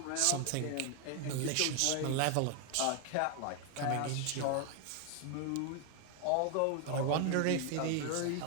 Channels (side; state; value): both; different; correlation 0.01